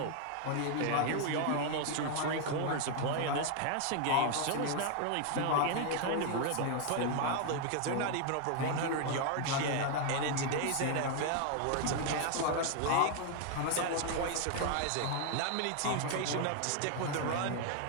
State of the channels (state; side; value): different; both; correlation 0.00